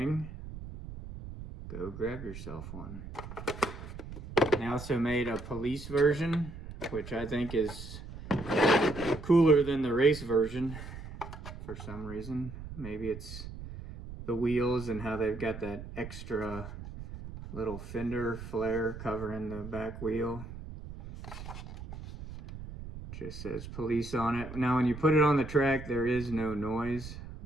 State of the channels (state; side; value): noise; right; rumble, 11 dB below the sound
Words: go grab yourself one. They also made a police version, which I think is cooler than the race version for some reason. Maybe it's the wheels and how they've got that extra little fender flare covering the back wheel. Just says police on it. Now when you put it on the track, there is no noise,